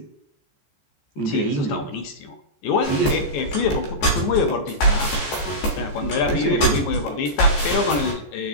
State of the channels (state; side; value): late; right; 14 ms